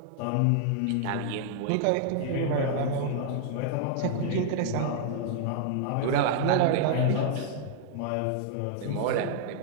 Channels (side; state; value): both; different; correlation -0.01